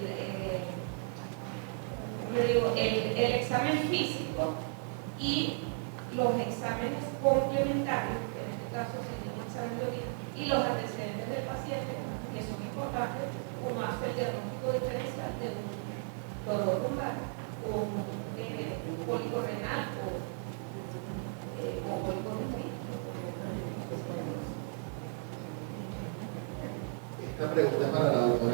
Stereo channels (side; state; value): left; silent; 55 dB below the other